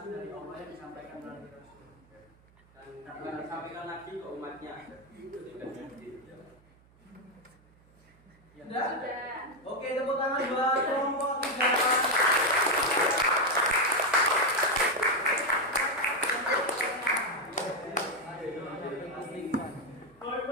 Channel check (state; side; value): noise; right; hum, 29 dB below the sound